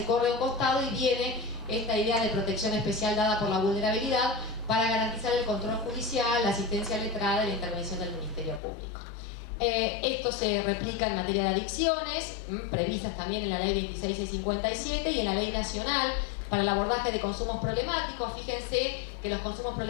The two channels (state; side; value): drops out; right; at 8.6 s